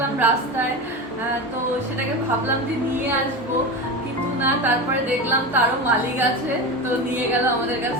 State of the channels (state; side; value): normal; both; correlation 0.24